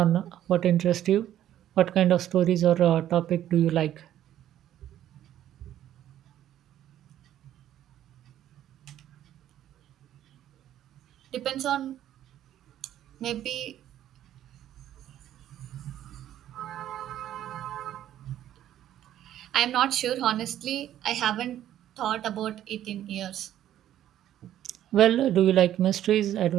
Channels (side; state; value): left; quieter; 11.9 dB